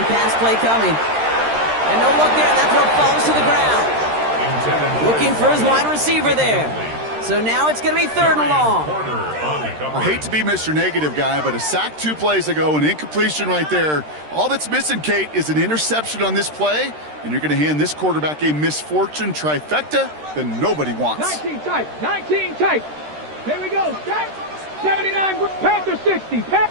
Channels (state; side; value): late; left; 13 ms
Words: pass play coming. And no look there. That throw falls to the ground. Looking for his wide receiver there. So now it's going to be 3rd and long. I hate to be Mr. Negative guy, but a sack 2 plays ago, an incompletion right there. All that's missing, Kate, is an interception on this play, and you're going to hand this quarterback a misfortune trifecta that nobody wants. 19 tight, 19 tight. Here we go, tight. 79 Panther 60,